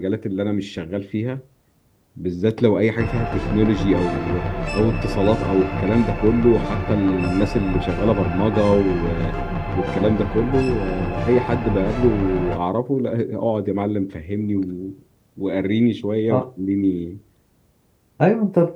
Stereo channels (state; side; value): identical; both; correlation 1.00